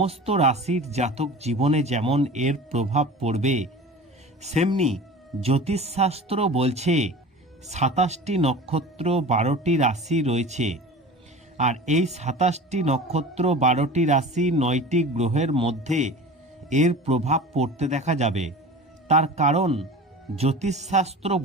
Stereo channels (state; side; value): normal; both; correlation 0.37